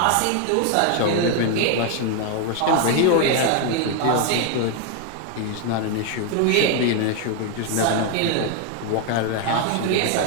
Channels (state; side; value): different; both; correlation 0.01